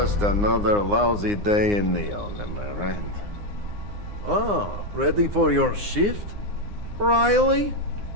another lousy day in Neon, am I right? Ah, ready for your shift, Riley?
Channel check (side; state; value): left; late; 9.7 ms